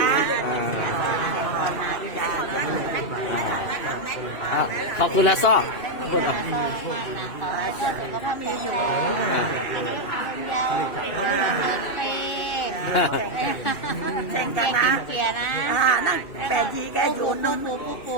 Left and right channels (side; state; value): right; late; 2.6 ms